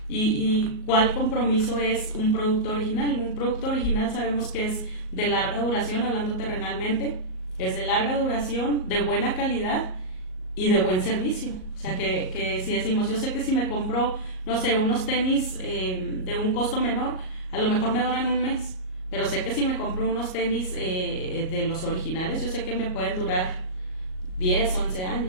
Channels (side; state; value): right; late; 38 ms